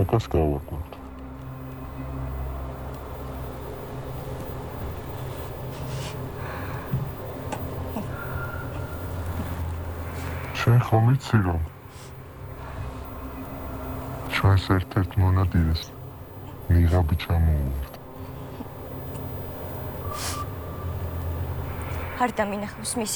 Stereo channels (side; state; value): both; identical; correlation 1.00